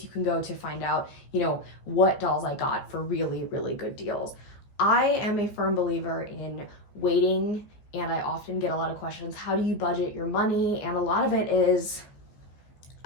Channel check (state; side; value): late; right; 14 ms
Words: you can go to find out, what dolls I got for really good deals. I am a firm believer in waiting, and I often get a lot of questions, how do you budget your money? And a lot of it is